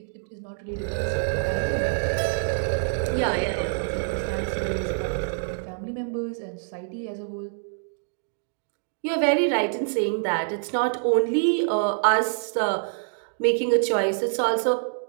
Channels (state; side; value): silent; left; digital silence